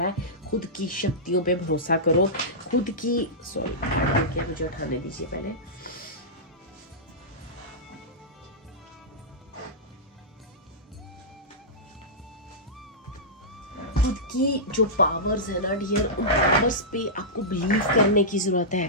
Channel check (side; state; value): both; normal; correlation -0.14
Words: है, खुद की शक्तियों पे भरोसा करो, खुद की मुझे उठाने दीजिए पहले। खुद की जो पावर्स है ना डियर, उन पावर्स पे आपको बिलीव करने की जरूरत